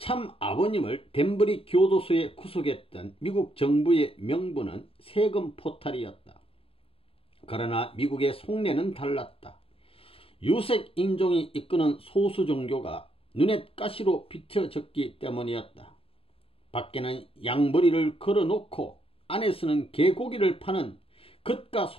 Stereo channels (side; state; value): right; late; 0.27 ms